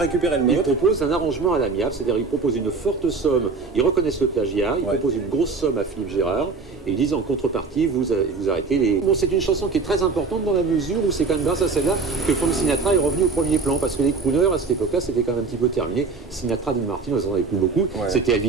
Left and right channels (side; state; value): left; quieter; 4.3 dB